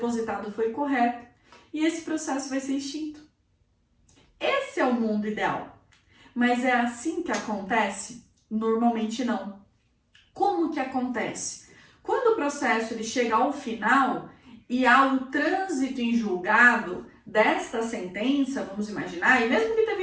foi correto e esse processo vai ser extinto. Esse é o mundo ideal. Mas é assim que acontece? Normalmente não. Como que acontece? Quando o processo ele chega ao final e há o trânsito em julgado desta sentença, vamos imaginar, e mesmo que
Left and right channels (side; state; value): both; identical; correlation 1.00